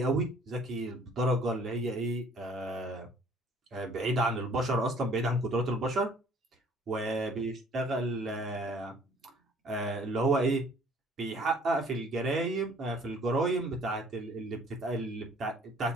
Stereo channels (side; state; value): both; normal; correlation 0.57